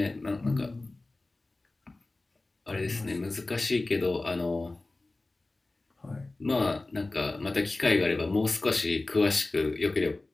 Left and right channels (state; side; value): quieter; right; 3.1 dB